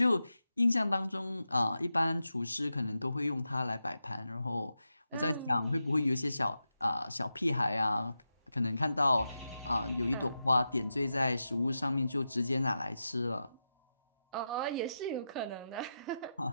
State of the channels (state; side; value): inverted; both; correlation -0.90